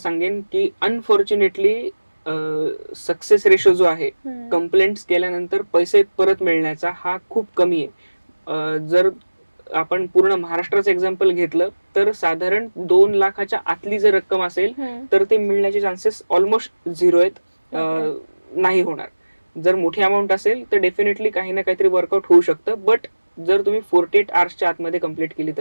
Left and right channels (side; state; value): both; inverted; correlation -1.00